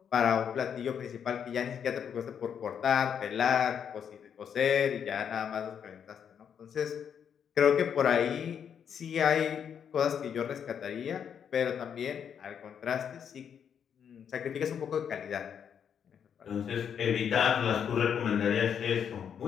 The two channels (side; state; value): right; quieter; 7.9 dB